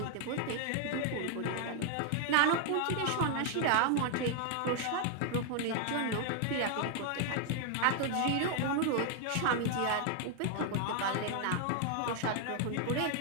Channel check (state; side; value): different; both; correlation 0.00